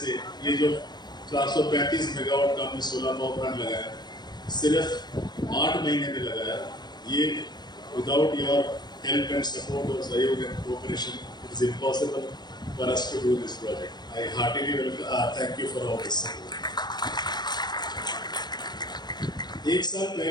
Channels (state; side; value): late; right; 0.21 ms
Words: ये जो 435 मेगावाट का हमने सोलर पावर प्लांट लगाया, सिर्फ 8 महीने में लगाया। ये without your help and support और सहयोग and cooperation it is impossible for us to do this project. I heartily thank you for all this. एक साल